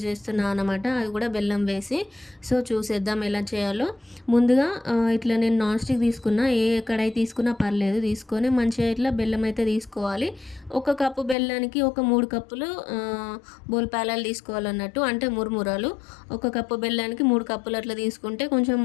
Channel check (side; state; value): right; drops out; at 11.4 s